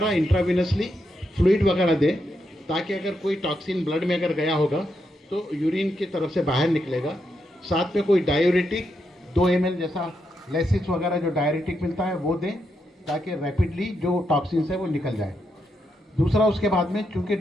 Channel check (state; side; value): normal; both; correlation 0.82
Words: इंट्राविनसली फ्लूइड वगैरह दें, ताकि अगर कोई टॉक्सिन ब्लड में अगर गया होगा तो यूरिन की तरफ से बाहर निकलेगा। साथ में कोई डायूरेटिक 2 ml जैसा लेसिस वगैरह जो डायूरेटिक मिलता है वो दें, ताकि रैपिडली जो टॉक्सिन्स है वो निकल जाए। दूसरा, उसके बाद में चूंकि